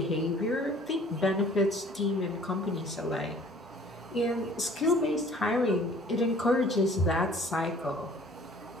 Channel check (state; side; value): normal; both; correlation 0.52